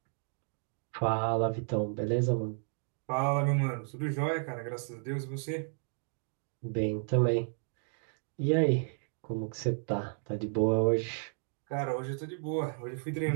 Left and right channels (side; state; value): left; silent; 56 dB below the other